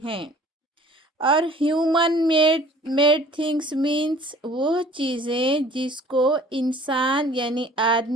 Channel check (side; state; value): both; normal; correlation 0.51